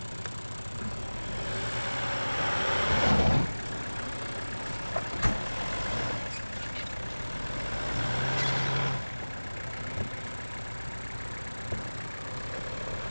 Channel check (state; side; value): inverted; both; correlation -1.00